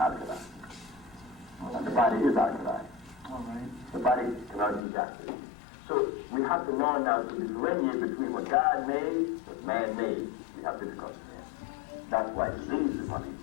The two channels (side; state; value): right; drops out; at 4.9 s